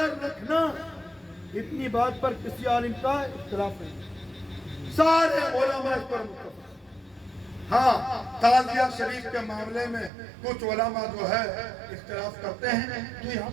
رکھنا، اتنی بات پر کسی عالم کا اختلاف نہیں، سارے علماء اس پر متفق۔ ہاں تعزیہ شریف کے معاملے میں کچھ علماء جو ہے اختلاف کرتے ہیں، تو یہاں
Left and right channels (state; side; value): drops out; left; at 10.1 s